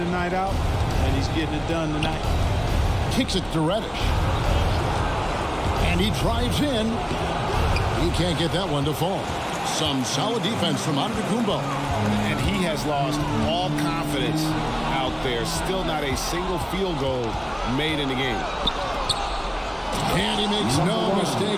night out, and he's getting it done tonight. Kicks it to Reddish. And he drives in. He can't get that one to fall. Some solid defense from Antetokounmpo. And he has lost all confidence out there. Still not a single field goal made in the game. And he makes no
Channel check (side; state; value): both; identical; correlation 1.00